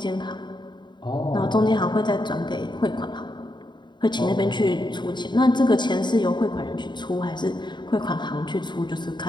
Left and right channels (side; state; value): right; late; 0.22 ms